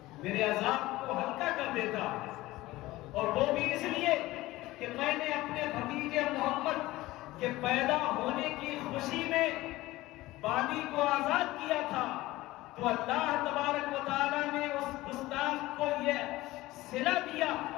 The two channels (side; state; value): right; quieter; 18.1 dB